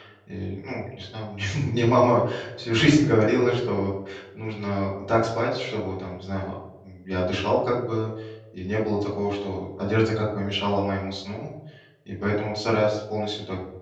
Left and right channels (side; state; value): both; identical; correlation 1.00